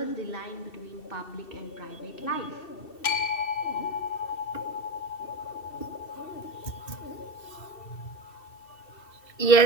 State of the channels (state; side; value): late; right; 2.7 ms